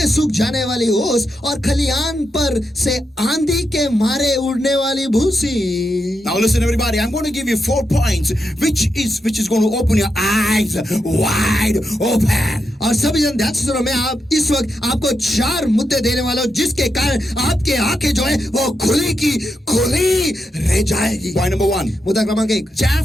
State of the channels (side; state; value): both; normal; correlation 0.85